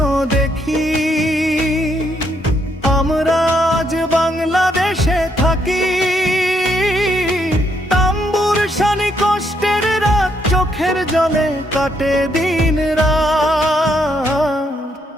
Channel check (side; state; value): both; normal; correlation 0.74